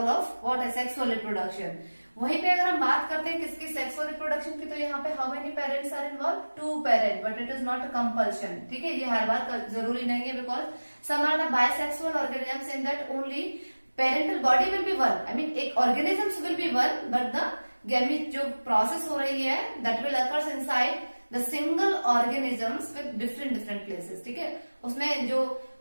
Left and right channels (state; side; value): inverted; both; correlation -1.00